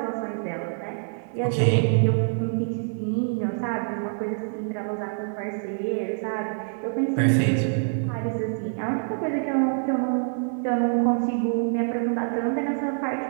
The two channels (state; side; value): silent; left; digital silence